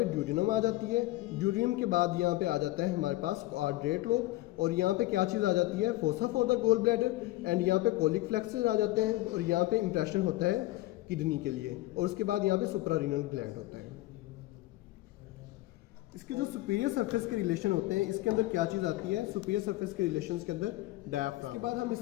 ड्यूडिनम आ जाती है। ड्यूडिनम के बाद यहाँ पे आ जाता है हमारे पास कॉर्डेट लोब, और यहाँ पे क्या चीज़ आ जाती है, fossa for the gall bladder, and यहाँ पे कोलिक फ्लेक्सस आ जाते हैं, और यहाँ पे इंप्रेशन होता है किडनी के लिए, और उसके बाद यहाँ पे सुप्रारीनल ग्लैंड होता है। इसके जो सुपीरियर सरफेस के रिलेशन होते हैं, इसके अंदर क्या चीज़ आती है, सुपीरियर सरफेस के रिलेशंस के अंदर डायफ्राम। इसके बाद हम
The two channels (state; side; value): quieter; right; 18.0 dB